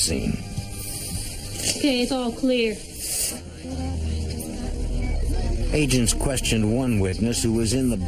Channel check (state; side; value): identical; both; correlation 1.00